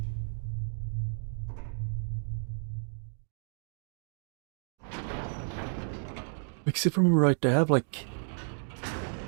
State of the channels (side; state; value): left; silent; digital silence